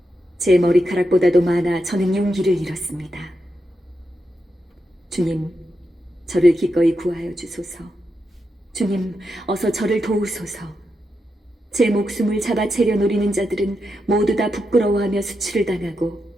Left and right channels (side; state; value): both; normal; correlation 0.86